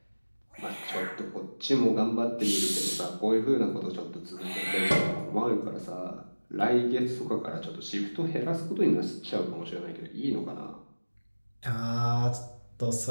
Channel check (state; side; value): inverted; both; correlation -1.00